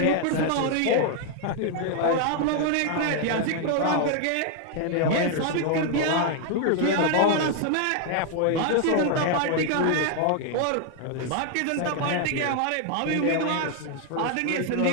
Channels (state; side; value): different; both; correlation 0.00